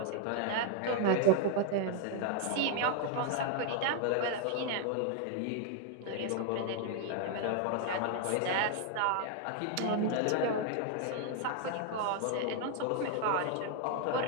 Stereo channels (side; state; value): both; different; correlation 0.00